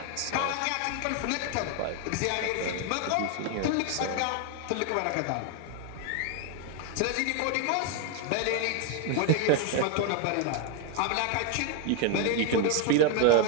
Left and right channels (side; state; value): both; different; correlation 0.00